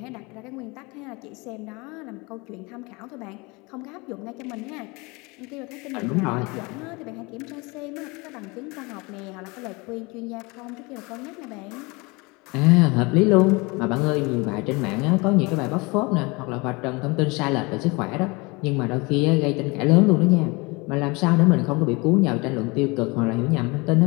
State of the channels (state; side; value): quieter; right; 26.3 dB